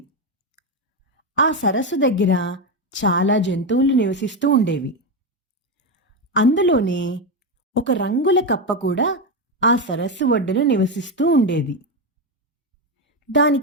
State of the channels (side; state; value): both; normal; correlation 0.11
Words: ఆ సరస్సు దగ్గర చాలా జంతువులు నివసిస్తూ ఉండేవి. అందులోనే ఒక రంగుల కప్ప కూడా ఆ సరస్సు ఒడ్డున నివసిస్తూ ఉండేది.